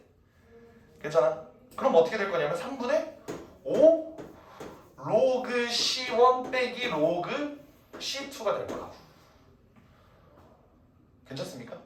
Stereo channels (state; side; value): identical; both; correlation 1.00